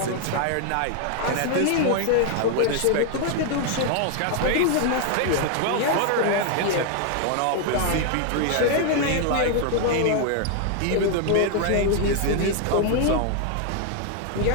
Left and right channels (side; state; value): both; different; correlation 0.00